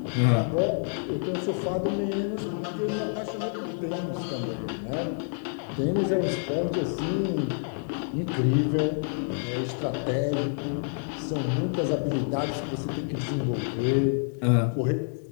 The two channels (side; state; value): right; silent; 56 dB below the other